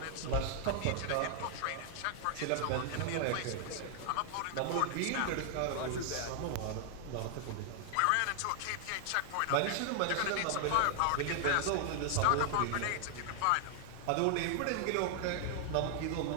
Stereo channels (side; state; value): both; different; correlation 0.00